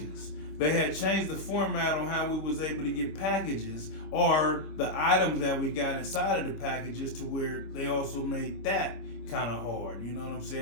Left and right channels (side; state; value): right; late; 25 ms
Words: They had changed the format on how we was able to get packages or the items that we got inside of the packages to where they also made that kind of hard, you know what I'm